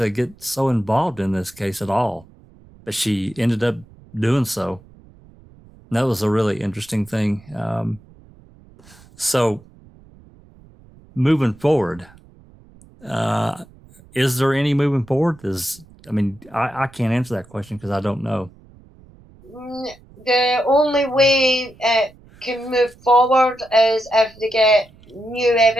get so involved in this case at all, but she ended up doing so. And that was a really interesting thing. So moving forward, is there any moving forward? I can't answer that question because I don't know. The only way it can move forward is if they get new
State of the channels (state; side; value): noise; right; rumble, 25 dB below the sound